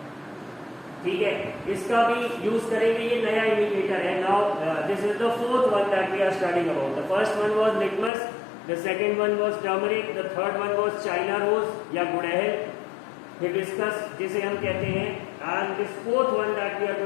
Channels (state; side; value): drops out; right; at 8.1 s